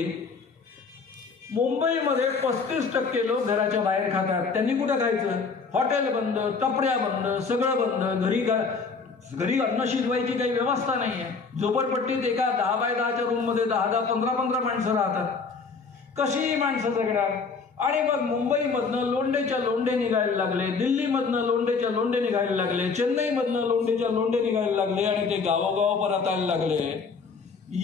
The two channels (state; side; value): quieter; right; 4.9 dB